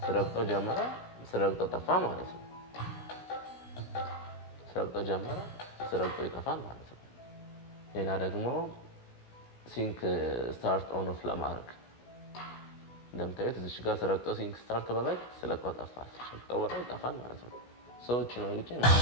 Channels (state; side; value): late; right; 16 ms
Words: ስረግጠው ጀመረ፣ ስረግጠው ጠፋ ማለት ነው። ስረግጠው ጀመረ፣ ስረግጠው ይጠፋል ማለት ነው። ሌላ ደግሞ ሲንክ ስታርት ኦን ኦፍ ለማድረግ እንደምታዩት እዚህ ጋር ስረግጠው ሲንክ ስታርት በላይ ስለቀው ጠፋ፣ ስለቀው በላይ ይጠፋል ማለት ነው። ሰዎች ነው እንጂ